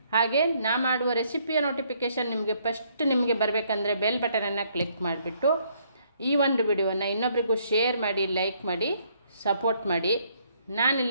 ಹಾಗೆ ನಾ ಮಾಡುವ ರೆಸಿಪಿಯ ನೋಟಿಫಿಕೇಷನ್ ನಿಮಗೆ ಬರಬೇಕಂದ್ರೆ ಬೆಲ್ ಬಟನನ್ನು ಕ್ಲಿಕ್ ಮಾಡಿಬಿಟ್ಟು ಈ ಒಂದು ವಿಡಿಯೋವನ್ನು ಇನ್ನೊಬ್ಬರಿಗೂ ಶೇರ್ ಮಾಡಿ, ಲೈಕ್ ಮಾಡಿ, ಸಪೋರ್ಟ್ ಮಾಡಿ.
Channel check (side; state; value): both; inverted; correlation -0.68